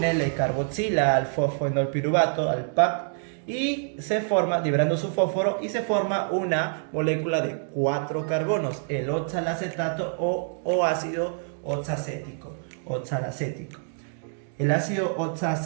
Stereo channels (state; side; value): silent; left; digital silence